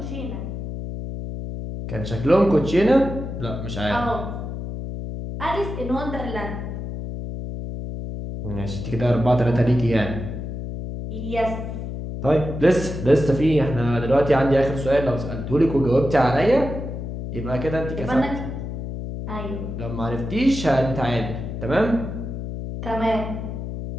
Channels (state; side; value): noise; left; hum, 6 dB below the sound